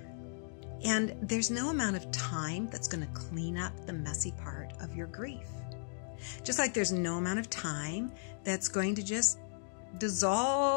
And there's no amount of time that's going to clean up the messy part of your grief. Just like there's no amount of time that's going to just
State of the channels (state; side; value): silent; right; digital silence